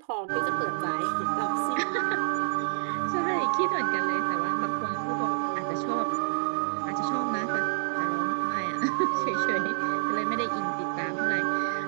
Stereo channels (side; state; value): left; silent; digital silence